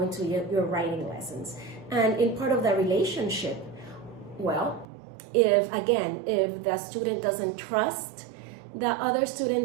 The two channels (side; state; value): left; drops out; at 4.9 s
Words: your writing lessons. And in part of the relationship, well, if the student doesn't trust the other